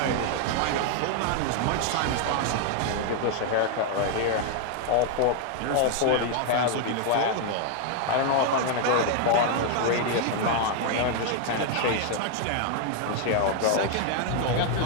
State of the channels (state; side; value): different; both; correlation 0.00